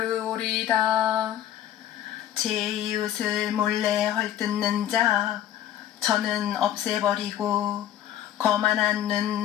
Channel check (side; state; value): right; quieter; 11.7 dB